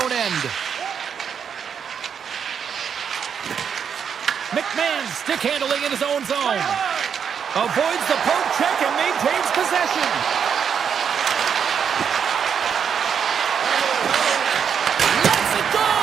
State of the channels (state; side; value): quieter; left; 7.4 dB